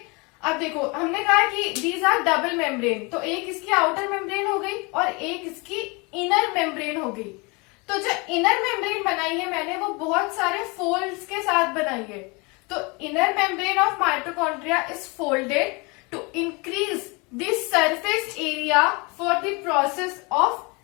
अब देखो हमने कहा कि दीज आर डबल मेम्ब्रेन, तो एक इसकी आउटर मेम्ब्रेन हो गई और एक इसकी इनर मेम्ब्रेन हो गई। तो जो इनर मेम्ब्रेन बनाई है मैंने वो बहुत सारे फोल्ड्स के साथ बनाई है। तो inner membrane of mitochondria is folded to increase the surface area for the process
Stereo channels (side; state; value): right; quieter; 28.4 dB